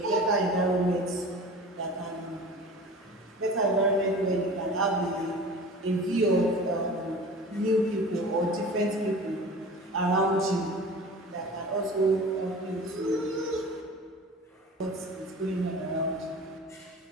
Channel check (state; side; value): normal; both; correlation 0.39